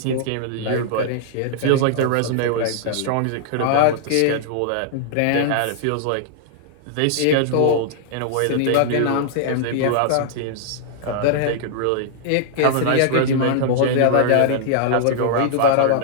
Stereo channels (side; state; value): both; different; correlation -0.01